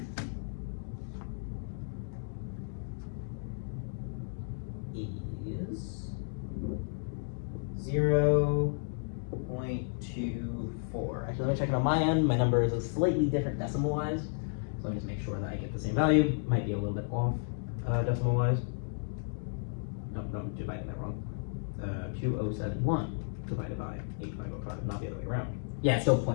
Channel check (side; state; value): right; silent; digital silence